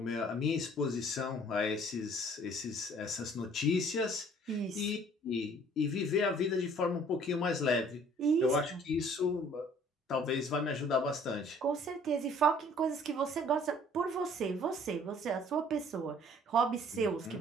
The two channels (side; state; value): both; normal; correlation 0.55